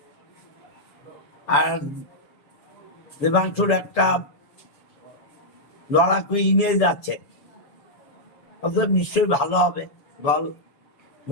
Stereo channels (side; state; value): right; late; 6.9 ms